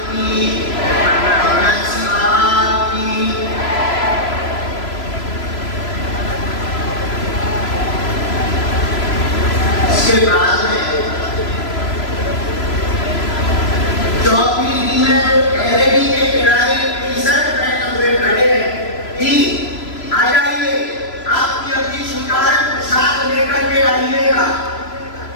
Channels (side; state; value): right; late; 3.0 ms